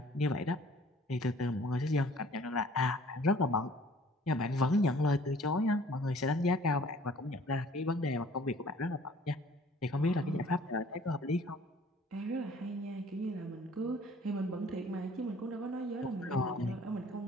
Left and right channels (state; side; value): normal; both; correlation 0.53